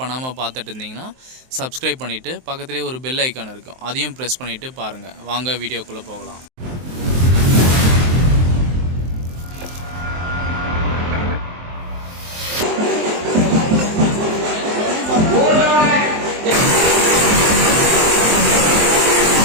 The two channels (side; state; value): left; late; 23 ms